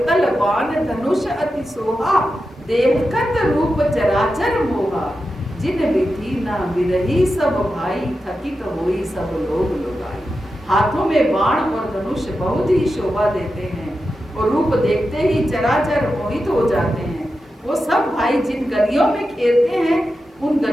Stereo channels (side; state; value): both; normal; correlation 0.90